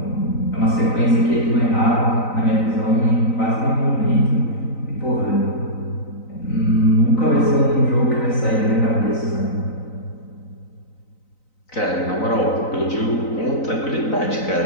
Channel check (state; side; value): late; right; 3.9 ms